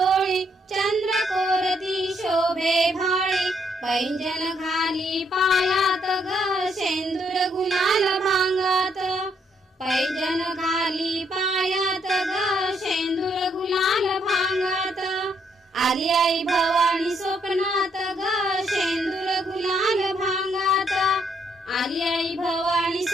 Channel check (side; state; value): both; normal; correlation 0.73